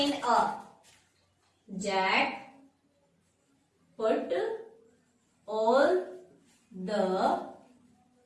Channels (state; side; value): identical; both; correlation 1.00